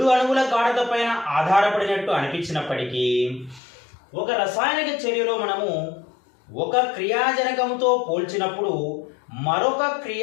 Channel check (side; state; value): right; drops out; at 3.6 s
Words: అణువుల గాఢత పైన ఆధారపడినట్టు అనిపించినప్పటికీ ఒక రసాయనిక చర్యలో మనము ఒక క్రియాజనకంతో పోల్చినప్పుడు మరొక